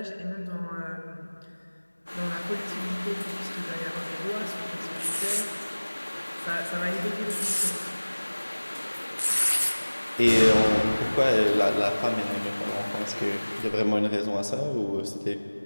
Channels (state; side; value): inverted; both; correlation -1.00